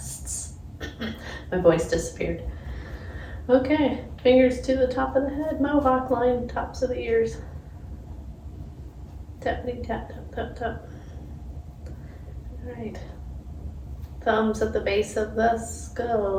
My voice disappeared. Okay, fingers to the top of the head, mohawk line, tops of the ears. Tappity tap, tap, tap, tap. All right. Thumbs at the base of the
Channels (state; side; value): identical; both; correlation 1.00